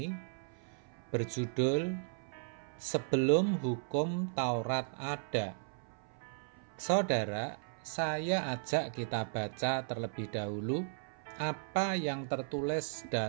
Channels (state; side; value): silent; left; 54 dB below the other